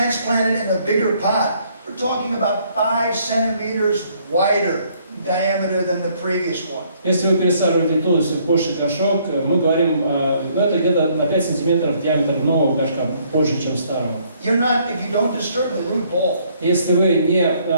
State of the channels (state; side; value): inverted; both; correlation -0.66